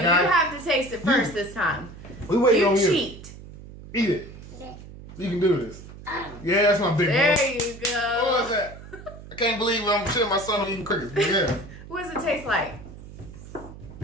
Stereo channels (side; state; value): right; noise; hum, 16 dB below the sound